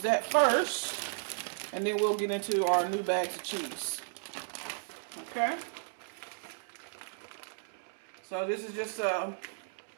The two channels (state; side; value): silent; left; digital silence